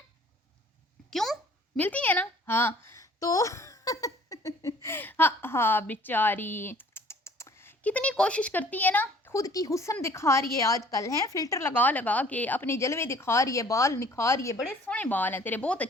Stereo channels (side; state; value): both; normal; correlation 0.53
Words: क्यों मिलती है ना? हाँ तो हाँ हाँ बेचारी कितनी कोशिश करती है ना, خود کی حسن دکھا رہی ہے آج کل، ہیں فلٹر لگا لگا کے اپنے جلوے دکھا رہی ہے، بال نکھار رہی ہے، بڑے سونے بال ہیں تیرے، بہت